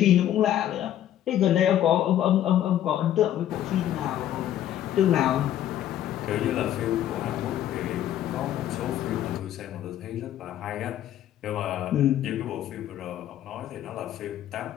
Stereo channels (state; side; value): quieter; right; 11.7 dB